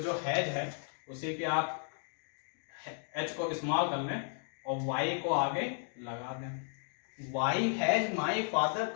हैज है उसी के आप एच को स्मॉल कर लें और वाई को आगे लगा दें। Why has my father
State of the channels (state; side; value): silent; right; 55 dB below the other